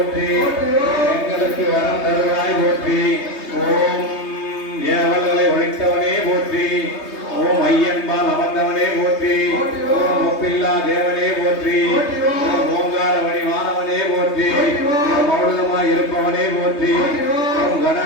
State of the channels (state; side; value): late; right; 3.3 ms